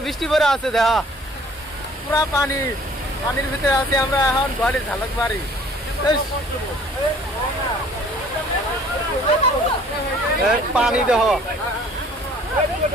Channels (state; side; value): normal; both; correlation 0.54